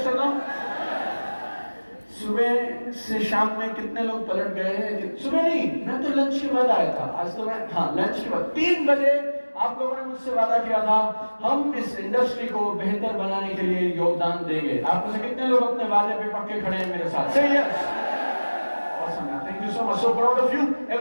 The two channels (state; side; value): inverted; both; correlation -1.00